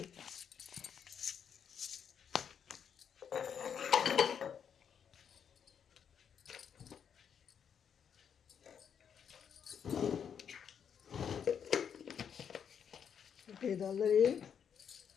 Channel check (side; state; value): right; quieter; 7.7 dB